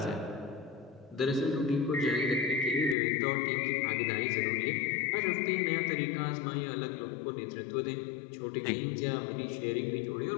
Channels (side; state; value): right; drops out; at 3.0 s